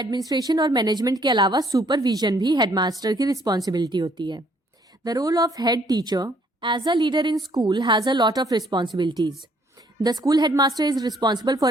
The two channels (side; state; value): both; normal; correlation 0.64